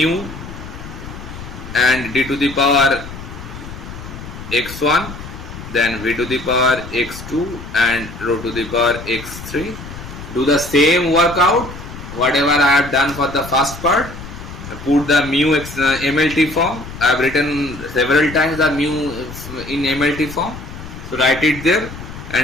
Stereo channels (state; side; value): noise; left; rumble, 12 dB below the sound